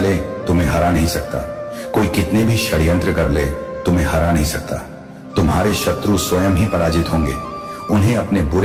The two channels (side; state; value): both; identical; correlation 1.00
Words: तुम्हें हरा नहीं सकता। कोई कितने भी षड्यंत्र कर ले तुम्हें हरा नहीं सकता। तुम तुम्हारे शत्रु स्वयं ही पराजित होंगे। उन्हें अपने